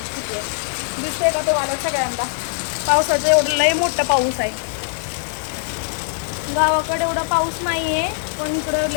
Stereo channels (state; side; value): silent; right; digital silence